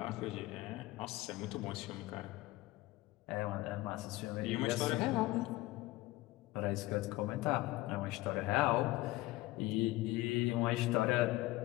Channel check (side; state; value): right; quieter; 18.6 dB